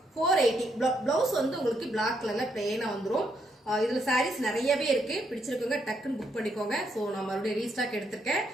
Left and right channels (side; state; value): both; normal; correlation 0.76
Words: 480. பிளவுஸ் வந்து உங்களுக்கு பிளாக் கலர்ல பிளெயினா வந்துடும். இதுல சாரீஸ் நிறையவே இருக்கு, பிடிச்சிருக்கோங்க டக்குன்னு புக் பண்ணிக்கோங்க. ஸோ நான் மறுபடியும் ரீஸ்டாக் எடுத்திருக்கேன்.